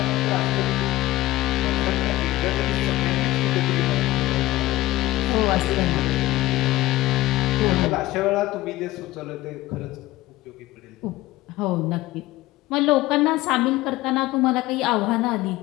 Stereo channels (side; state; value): right; quieter; 17.3 dB